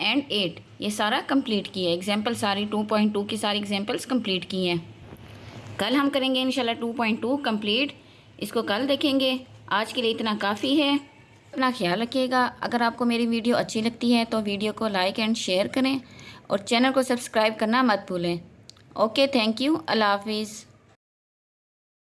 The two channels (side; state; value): both; identical; correlation 1.00